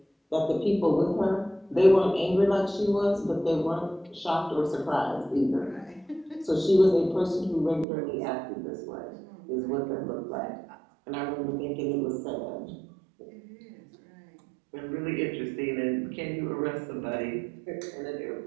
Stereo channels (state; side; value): drops out; left; at 7.9 s